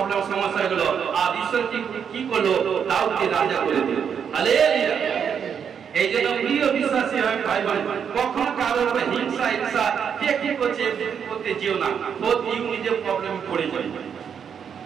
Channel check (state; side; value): quieter; left; 7.4 dB